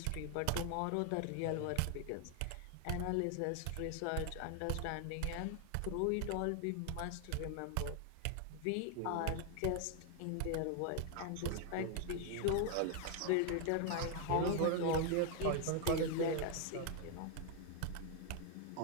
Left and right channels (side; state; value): both; different; correlation 0.00